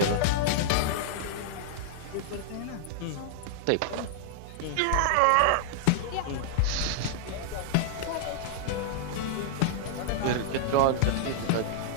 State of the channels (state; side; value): different; both; correlation -0.01